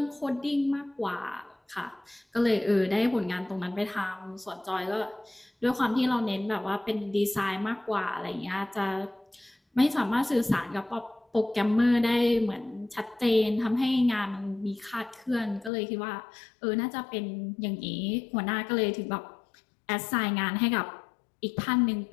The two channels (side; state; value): right; drops out; at 15.7 s